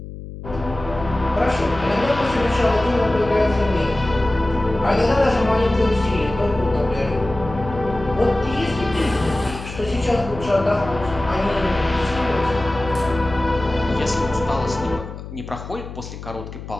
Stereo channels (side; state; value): left; noise; hum, 12 dB below the sound